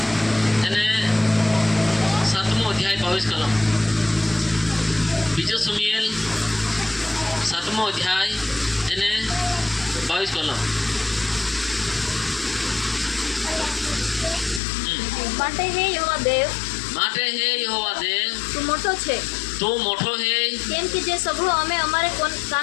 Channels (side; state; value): right; drops out; at 14.6 s